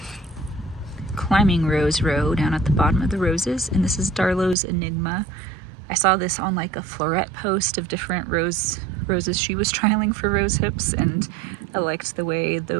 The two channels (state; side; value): drops out; left; at 4.5 s